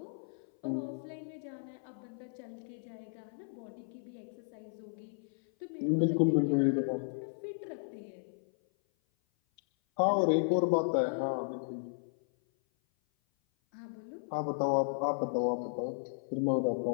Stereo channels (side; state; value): right; silent; 55 dB below the other